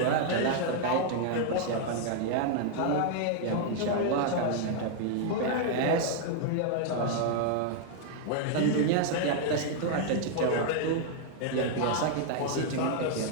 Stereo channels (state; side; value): different; both; correlation 0.00